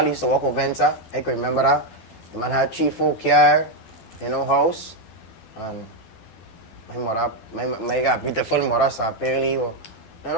used to walk over Venta. I could remember that. The man had 3-4 car, you know, house, and my mother, my got beautiful mother, so apparently, you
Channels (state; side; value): late; right; 12 ms